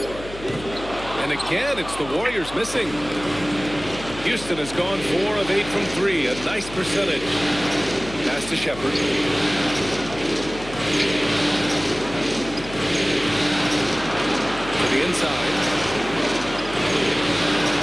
again, it's the Warriors missing. Houston has gone 4 of 8 from 3. A nice percentage. Pass to Shepard. To the inside.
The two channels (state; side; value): noise; left; hum, 14 dB below the sound